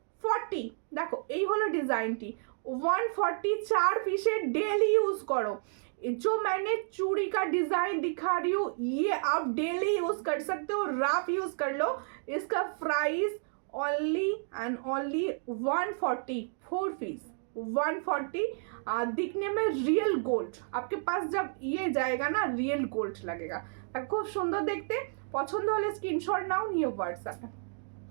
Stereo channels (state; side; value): silent; left; 57 dB below the other